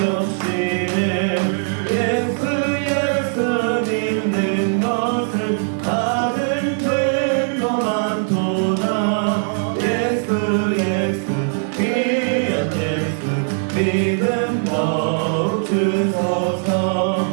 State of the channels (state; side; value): silent; left; digital silence